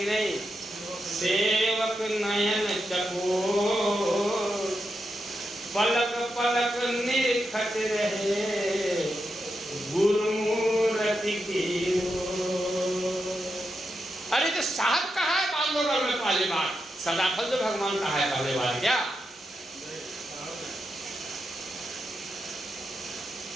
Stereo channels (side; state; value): both; normal; correlation 0.86